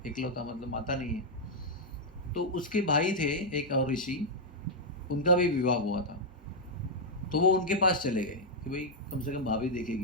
इकलौता, मतलब माता नहीं है। तो उसके भाई थे एक और ऋषि, उनका भी विवाह हुआ था, तो वो उनके पास चले गए कि भाई कम से कम भाभी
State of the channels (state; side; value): normal; both; correlation -0.04